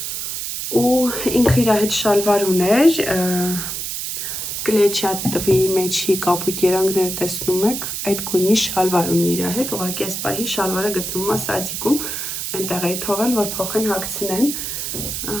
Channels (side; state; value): right; noise; hiss, 4 dB below the sound